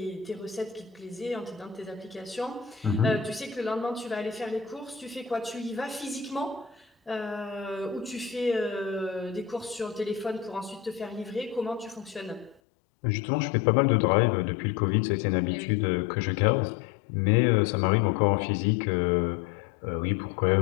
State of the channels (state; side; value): drops out; right; at 12.6 s